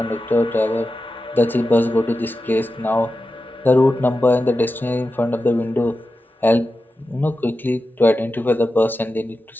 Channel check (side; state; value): both; normal; correlation 0.92